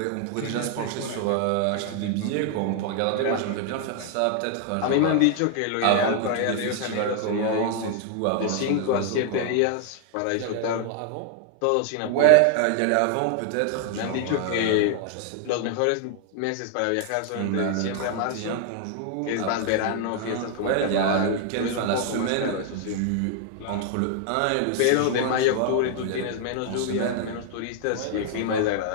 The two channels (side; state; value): both; different; correlation 0.00